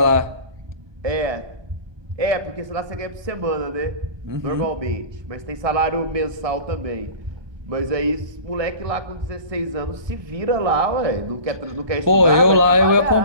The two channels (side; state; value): left; late; 1.2 ms